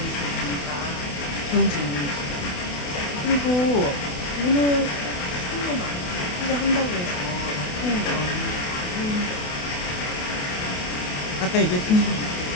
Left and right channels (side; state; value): right; late; 28 ms